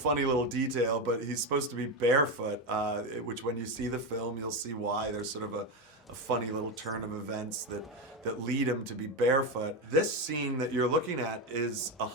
little detail, but he's supposed to be barefoot, which when you see the film, you'll see why. There's sort of a funny little turn of events that lead him to be barefoot. This scene that you're looking at is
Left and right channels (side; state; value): both; normal; correlation 0.13